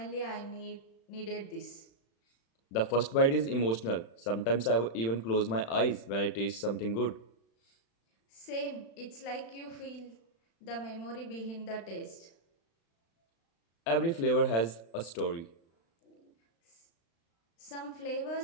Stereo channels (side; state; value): right; late; 35 ms